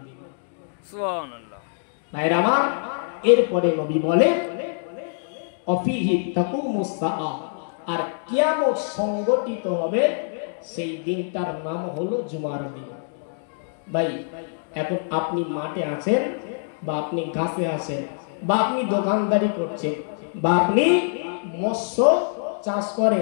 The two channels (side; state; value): right; silent; digital silence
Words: দিন। সুবহানাল্লাহ। ভাইরা আমার, এরপরে নবী বলেন অফিহি তাকুমুস সাআ, আর কিয়ামত সংগঠিত হবে সেই দিনটার নাম হলো জুমার দিন। ভাই এখন আপনি মাঠে আছেন বা আপনি গাছে আছেন বা আপনি দোকানদারি করছেন বা আপনি মৎস্য চাষ